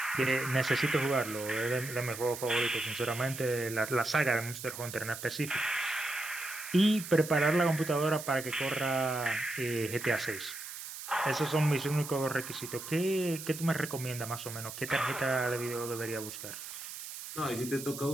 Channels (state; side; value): noise; right; hiss, 10 dB below the sound